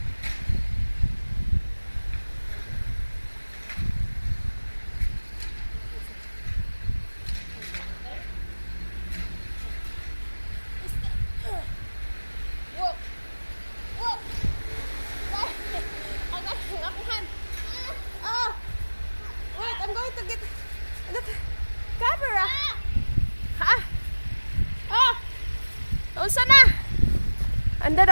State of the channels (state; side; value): inverted; both; correlation -1.00